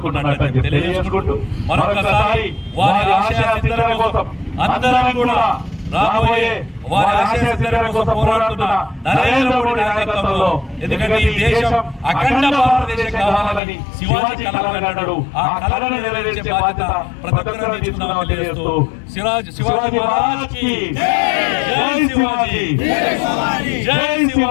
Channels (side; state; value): right; drops out; at 13.6 s